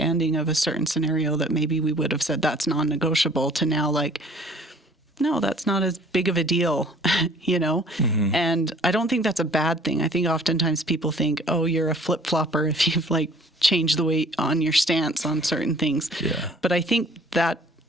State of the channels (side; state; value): both; normal; correlation 0.53